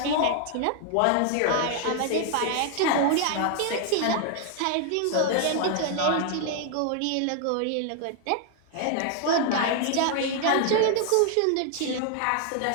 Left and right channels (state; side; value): different; both; correlation 0.00